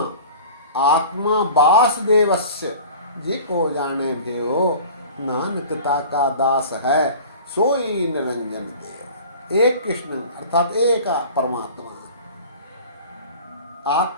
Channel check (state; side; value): inverted; both; correlation -0.41